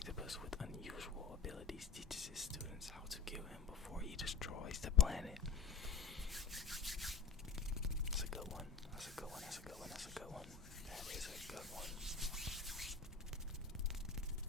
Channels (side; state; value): right; quieter; 5.8 dB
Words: with unusual abilities teaches his students how to kill him before he destroys the planet. That's a good one. That's a good one. That's a good one. That's a good one. That is a good one.